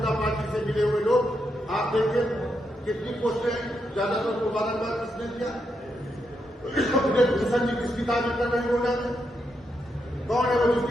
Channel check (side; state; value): both; normal; correlation 0.82